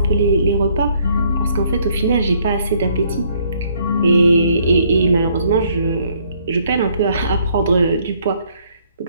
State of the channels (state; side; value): inverted; both; correlation -0.66